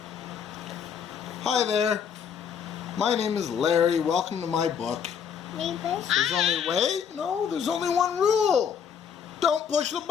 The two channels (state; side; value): quieter; right; 7.5 dB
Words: Hi there. My name is Larry. Welcome to my book. There's only one rule. Don't push the